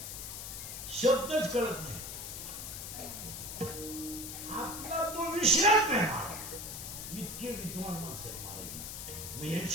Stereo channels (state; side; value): noise; left; hiss, 7 dB below the sound